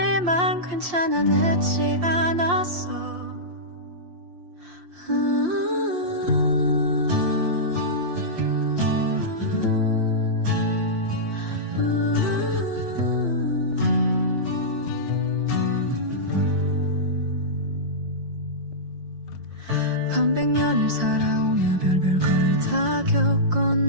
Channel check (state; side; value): late; left; 5.7 ms